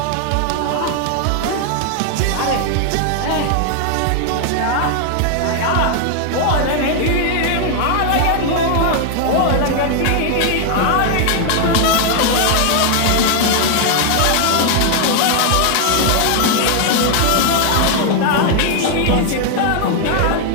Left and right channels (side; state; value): both; different; correlation 0.00